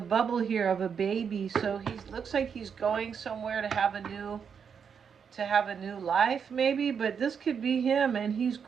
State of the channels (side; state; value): left; quieter; 6.9 dB